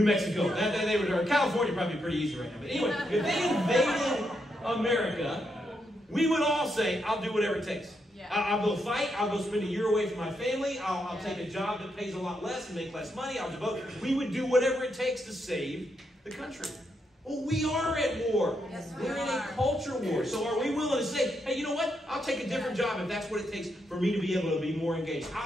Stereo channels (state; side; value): normal; both; correlation 0.81